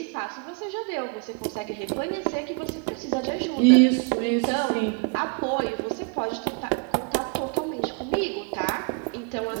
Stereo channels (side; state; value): left; quieter; 34.6 dB